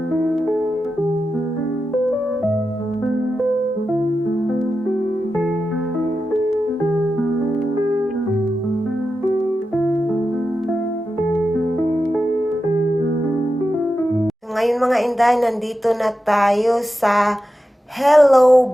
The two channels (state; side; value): normal; both; correlation 0.90